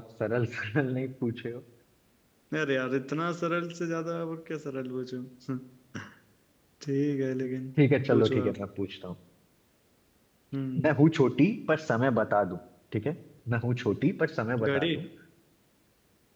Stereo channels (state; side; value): identical; both; correlation 1.00